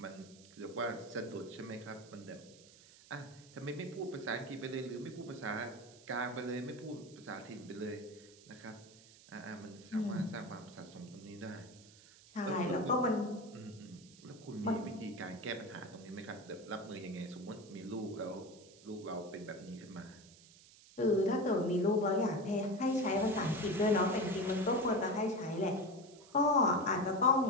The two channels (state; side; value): noise; right; hiss, 22 dB below the sound